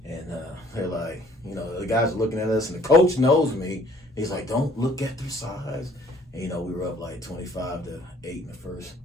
And they're like, the guys are looking at us, and the coach knows me. He's like, don't look at their size. And, we were up like 25-8 in the first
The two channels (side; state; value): both; normal; correlation 0.58